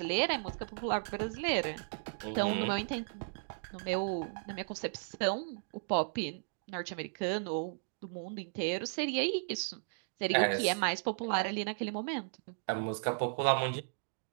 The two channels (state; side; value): silent; left; digital silence